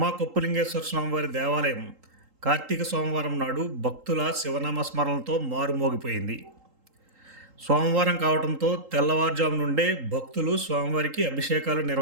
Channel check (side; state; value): left; late; 3.8 ms